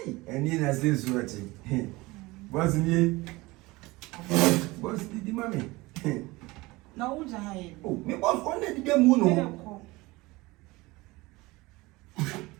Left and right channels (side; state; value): left; quieter; 21.7 dB